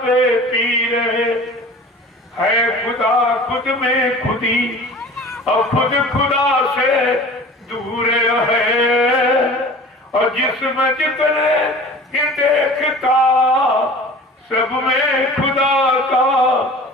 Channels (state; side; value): normal; both; correlation 0.42